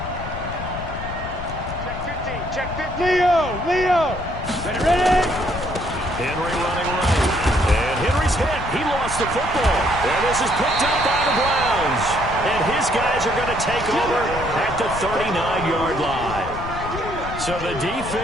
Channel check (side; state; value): left; noise; rumble, 9 dB below the sound